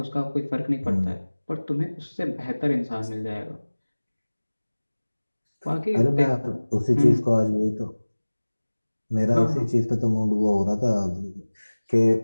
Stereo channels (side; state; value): both; inverted; correlation -1.00